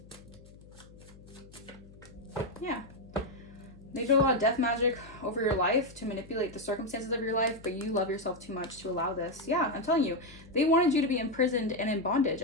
Yeah. They did a lot of death magic over your life to manipulate the circumstances of your life, but you love yourself too much to allow this. Yeah, I'm telling you. They wanted you to be imprisoned and in bondage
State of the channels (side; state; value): left; noise; hum, 21 dB below the sound